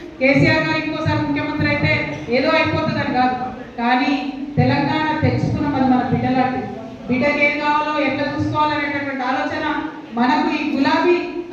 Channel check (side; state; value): both; identical; correlation 1.00